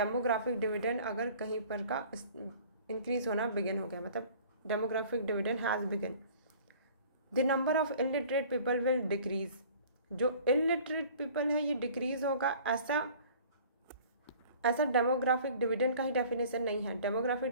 डिविडेंड अगर कहीं पर का इंक्रीज होना बिगिन हो गया, मतलब demographic dividend has begin, the number of illiterate people will decrease. जो इलिटरेट पीपल है ये डिक्रीज होगा, ऐसा डेमोग्राफिक डिविडेंड का ही डेफिनेशन नहीं है। डेमोग्राफिक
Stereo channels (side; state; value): both; inverted; correlation -0.49